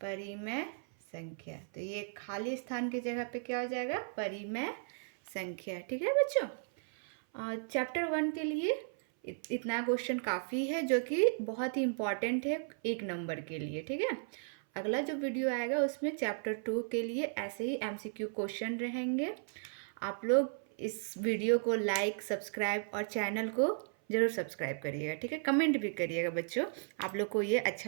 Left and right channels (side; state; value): left; silent; 54 dB below the other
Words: परिमेय संख्या। तो ये खाली स्थान की जगह पे क्या हो जाएगा? परिमेय संख्या, ठीक है बच्चों। चैप्टर 1 के लिए इतना क्वेश्चन काफ़ी है, जो कि बहुत ही इम्पॉर्टेंट है 1 नंबर के लिए, ठीक है। अगला जो वीडियो आएगा उसमें चैप्टर 2 के लिए ऐसे ही MCQ क्वेश्चन रहेंगे। आप लोग इस वीडियो को लाइक, सब्सक्राइब और चैनल को ज़रूर सब्सक्राइब करिएगा, ठीक है। कमेंट भी करिएगा बच्चों, आप लोग को ये